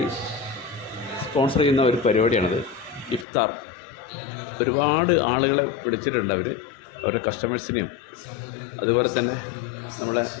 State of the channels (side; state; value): right; drops out; at 3.2 s